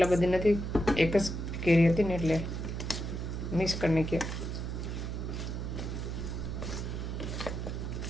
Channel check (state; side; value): noise; right; hum, 4 dB below the sound